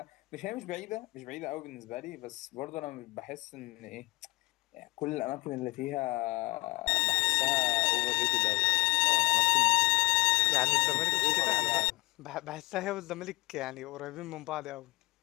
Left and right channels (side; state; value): right; quieter; 23.8 dB